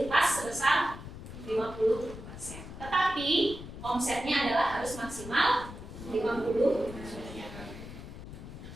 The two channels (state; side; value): noise; left; rumble, 12 dB below the sound